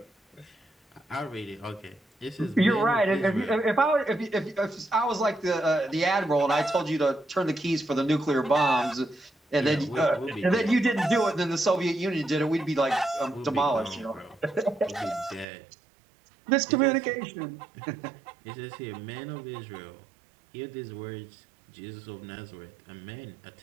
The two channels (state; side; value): drops out; left; at 15.5 s